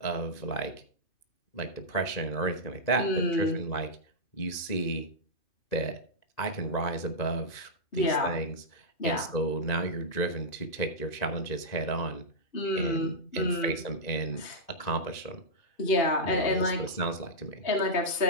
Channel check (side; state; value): right; late; 2.0 ms